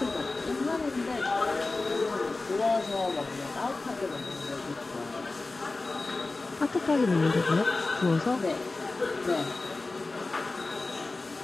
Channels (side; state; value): right; quieter; 3.4 dB